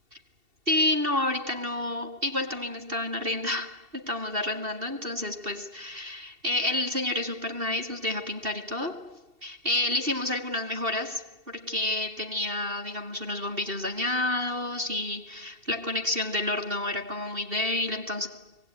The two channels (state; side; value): late; left; 2.7 ms